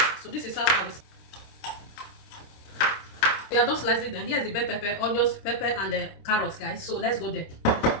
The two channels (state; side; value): late; right; 26 ms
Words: So this is how I will. We are just slicing them. Here's the bell pepper, onions, pepper, and the carrots, guys. So let's go there.